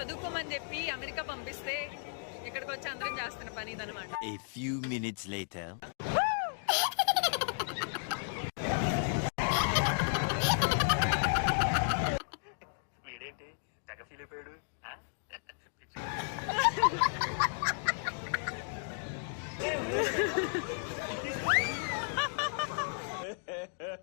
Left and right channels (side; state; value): right; silent; digital silence